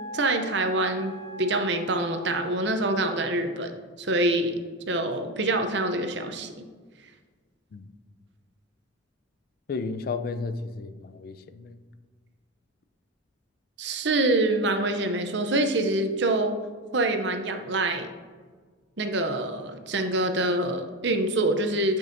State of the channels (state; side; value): normal; both; correlation 0.15